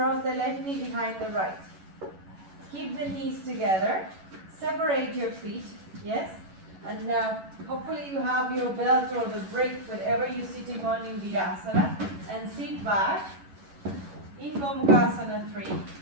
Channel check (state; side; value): late; left; 11 ms